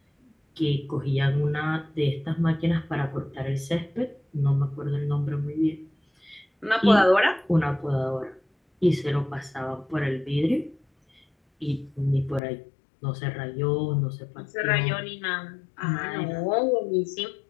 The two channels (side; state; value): right; drops out; at 12.4 s